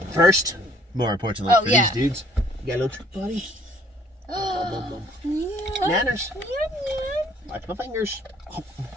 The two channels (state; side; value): normal; both; correlation 0.59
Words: First, more importantly for yeah. these dudes, you got a little treat, buddy. Yeah. Nanners. Yeah. Watch my fingers.